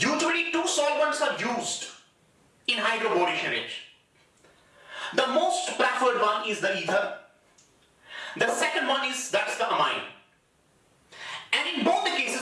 two solvents are used in hydroboration reaction. The most preferred one is the ether. The second one is that's the amine. And in both the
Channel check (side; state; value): both; identical; correlation 1.00